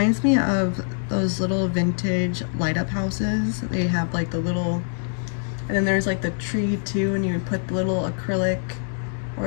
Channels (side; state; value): right; silent; 61 dB below the other